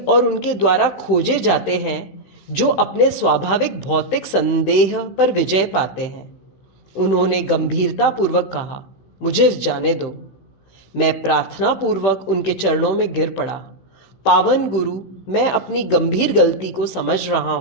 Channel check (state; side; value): late; right; 15 ms